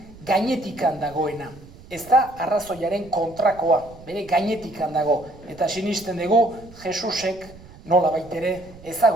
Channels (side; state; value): right; noise; rumble, 20 dB below the sound